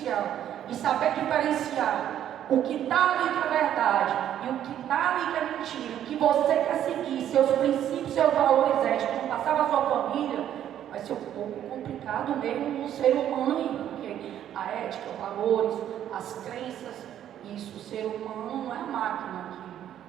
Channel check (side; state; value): left; quieter; 10.8 dB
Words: e saber diferenciar o que está ali que é verdade e o que está ali que é mentira, o que você quer seguir, seus princípios, seus valores éticos, não passar para a sua família, vai ser um pouco complicado mesmo no ser humano aí, porque a ética, os valores, as crenças, isso, o ser humano não é a máquina